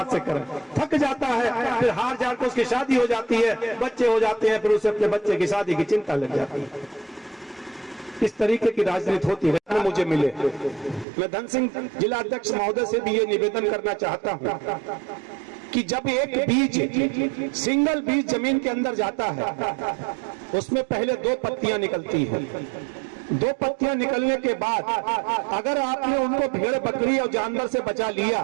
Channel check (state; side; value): drops out; left; at 11.1 s